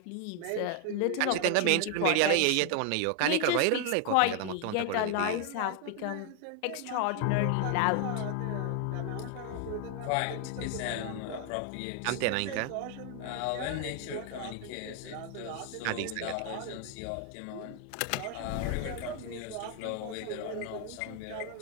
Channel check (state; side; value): different; both; correlation 0.00